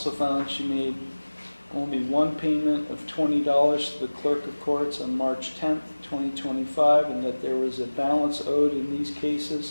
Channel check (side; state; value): both; inverted; correlation -1.00